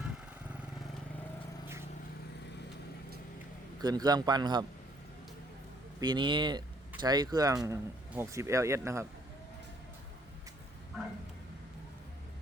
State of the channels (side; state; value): both; normal; correlation 0.64